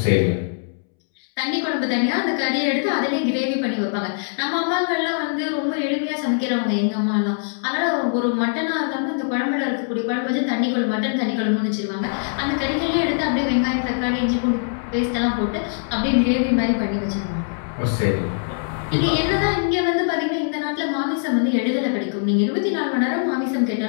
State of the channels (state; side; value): silent; right; 64 dB below the other